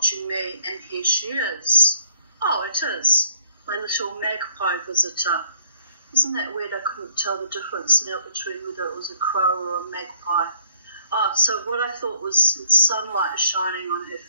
me, and here she is. Oh, it is, my little magpie visitor. Isn't that weird? I couldn't tell the difference now between whether it was a crow or a magpie. Oh, so what I thought was sunlight shining on her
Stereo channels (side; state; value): both; inverted; correlation -0.63